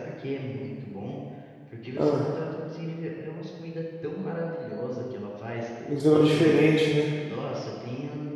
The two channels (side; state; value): both; identical; correlation 1.00